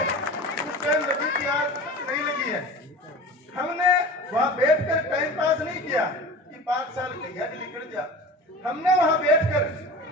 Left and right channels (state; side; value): normal; both; correlation 0.35